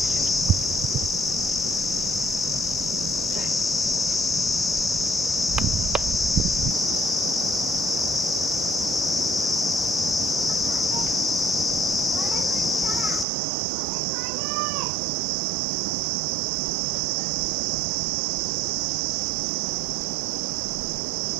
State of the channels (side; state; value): left; drops out; at 13.2 s